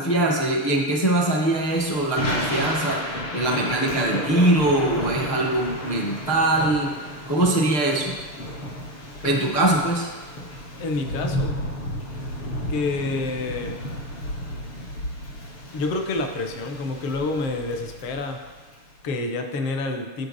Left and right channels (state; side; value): late; right; 6.8 ms